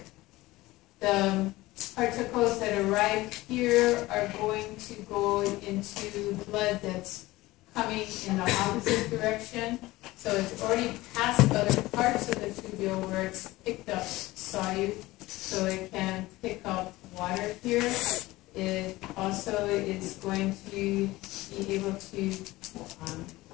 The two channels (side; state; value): right; quieter; 18.8 dB